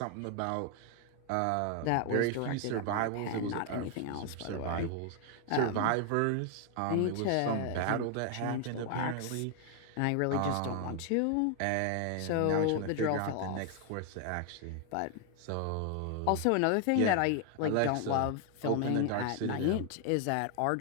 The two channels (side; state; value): both; different; correlation 0.00